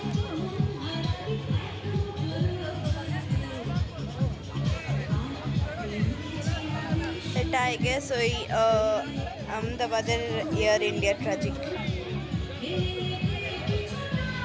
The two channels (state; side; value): identical; both; correlation 1.00